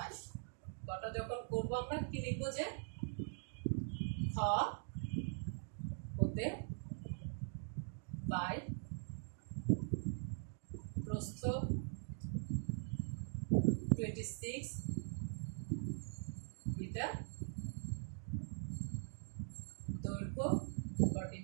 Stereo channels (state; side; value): silent; left; digital silence